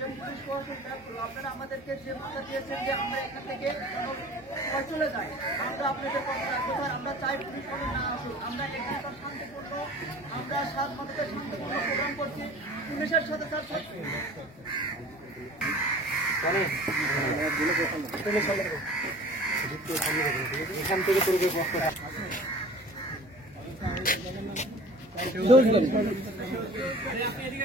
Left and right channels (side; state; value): both; normal; correlation 0.43